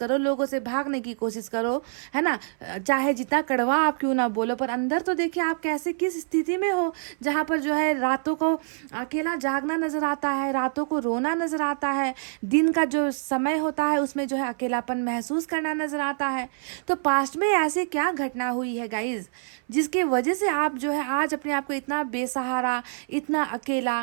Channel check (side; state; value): left; silent; 58 dB below the other